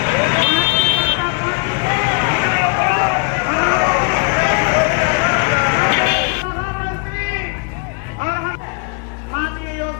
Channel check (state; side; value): quieter; right; 34.5 dB